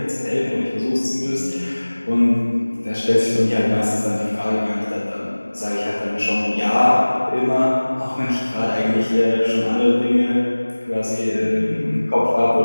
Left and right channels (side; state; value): both; inverted; correlation -1.00